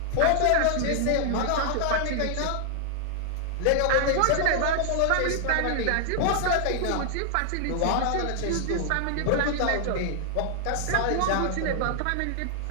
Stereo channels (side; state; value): both; different; correlation -0.01